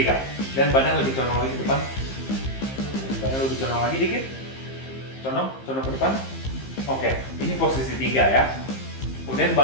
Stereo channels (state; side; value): late; right; 15 ms